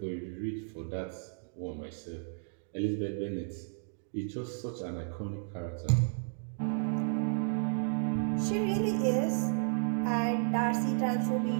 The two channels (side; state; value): left; silent; digital silence